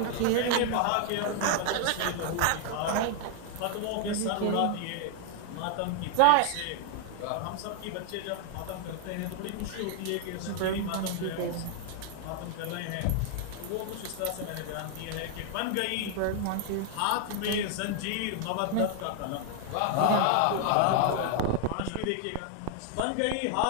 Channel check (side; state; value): both; different; correlation 0.00